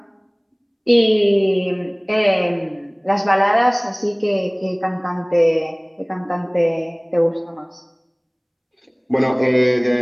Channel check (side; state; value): both; identical; correlation 1.00